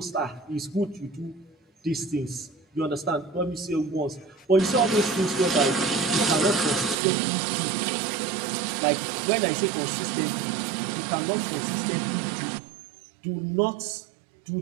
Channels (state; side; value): drops out; left; at 7.0 s